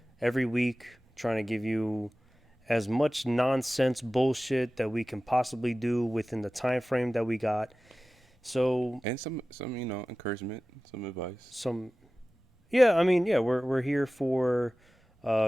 every week trying to give you as much nonsense bullshit that we can possibly do within the time frame that we got. So And some encouragement, some advice. We're here for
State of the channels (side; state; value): both; normal; correlation 0.96